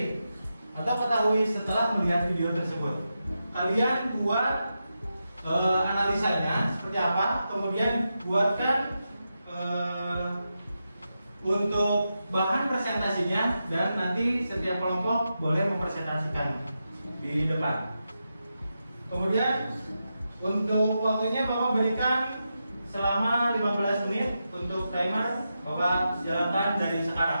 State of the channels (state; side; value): inverted; both; correlation -0.88